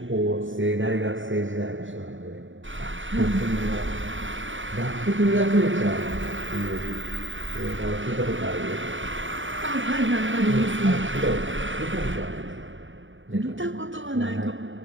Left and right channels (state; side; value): late; left; 0.56 ms